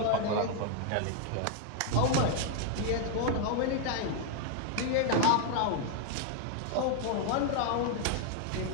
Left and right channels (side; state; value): both; different; correlation 0.00